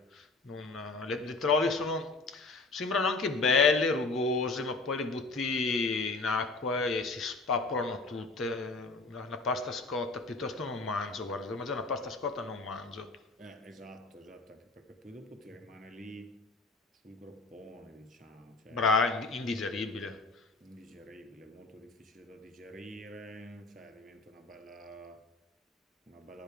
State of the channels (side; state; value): right; quieter; 3.5 dB